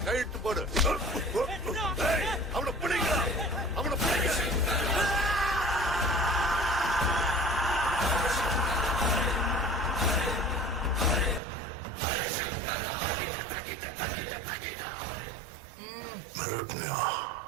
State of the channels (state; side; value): drops out; left; at 11.4 s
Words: கைட்டு போடு. அவனை பிடிங்க, அவனை பிடிங்க.